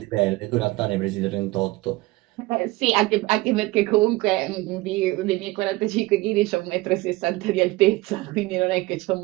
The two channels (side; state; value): left; quieter; 20.1 dB